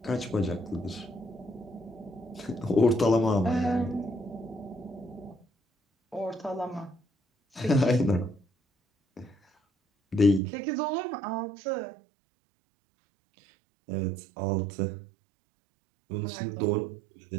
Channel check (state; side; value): drops out; left; at 10.4 s